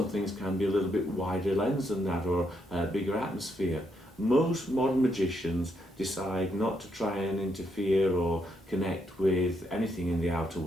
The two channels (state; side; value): normal; both; correlation 0.77